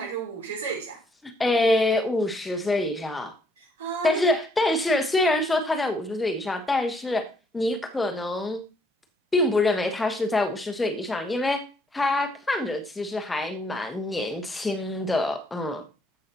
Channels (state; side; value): normal; both; correlation 0.68